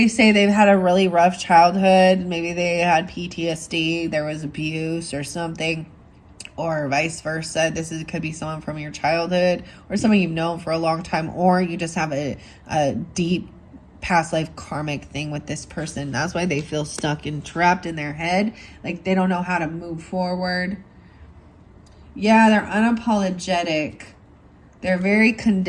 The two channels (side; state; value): both; identical; correlation 1.00